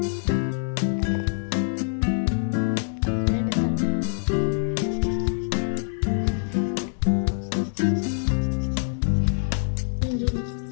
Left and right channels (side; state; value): right; silent; digital silence